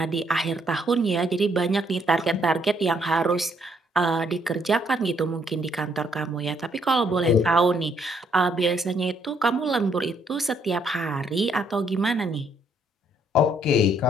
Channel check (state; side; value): normal; both; correlation 0.69